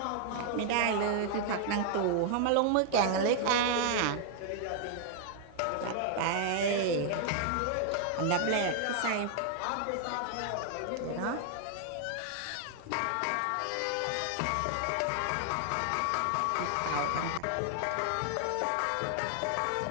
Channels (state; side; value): different; both; correlation 0.00